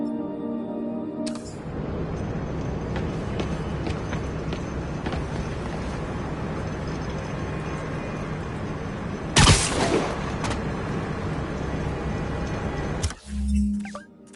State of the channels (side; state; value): both; identical; correlation 1.00